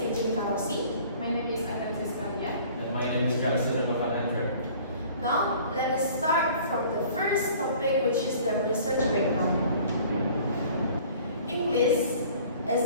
Rossi. My name is Thesis. And my name is Jackson Andre. Now, let us start from the first topic, which is the research background. English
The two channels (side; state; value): both; inverted; correlation -0.50